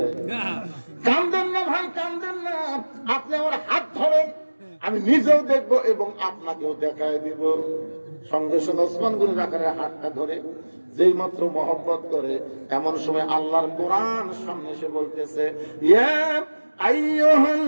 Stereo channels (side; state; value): both; inverted; correlation -1.00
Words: কাঁদেন না ভাই কাঁদেন না আপনি আমার হাত ধরেন আমি নিজেও দেখবো এবং আপনাকেও দেখায় দিব সঙ্গে সঙ্গে ওসমান গনি রাখালের হাতটা ধরে যেই মাত্র মহব্বত করে এমন সময় আল্লাহর কোরআন সামনে এসে বলতেছে ইয়া